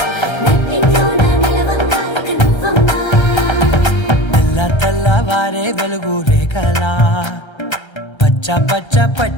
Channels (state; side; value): late; right; 1.3 ms